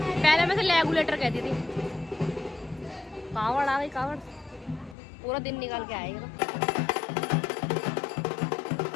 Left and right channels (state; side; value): drops out; right; at 5.0 s